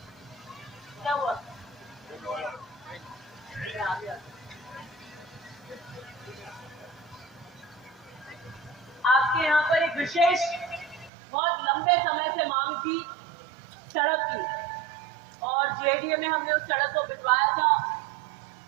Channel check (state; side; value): drops out; left; at 11.1 s